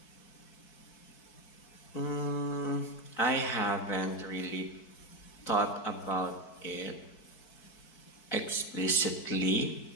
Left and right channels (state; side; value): late; right; 4.6 ms